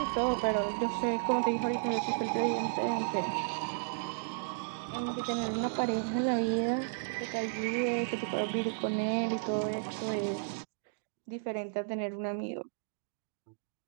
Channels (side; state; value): left; silent; digital silence